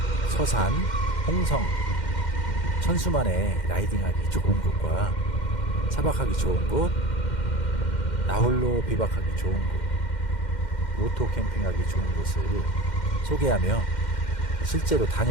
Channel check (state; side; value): late; right; 2.1 ms